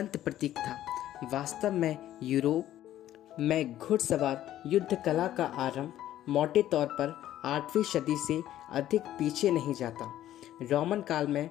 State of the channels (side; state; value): right; quieter; 12.8 dB